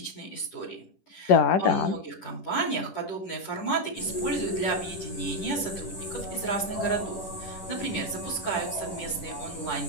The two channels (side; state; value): right; late; 10 ms